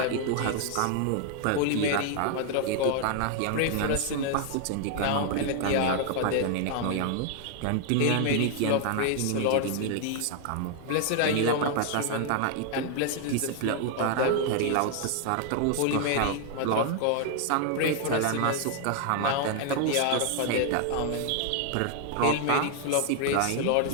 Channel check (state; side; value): different; both; correlation 0.00